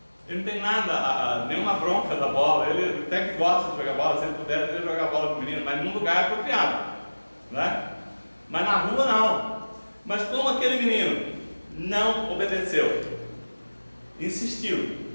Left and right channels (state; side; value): inverted; both; correlation -1.00